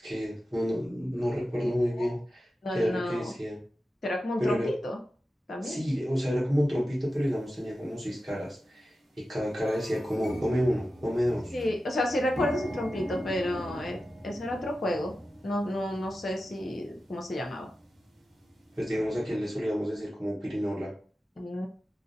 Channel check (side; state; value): both; normal; correlation 0.93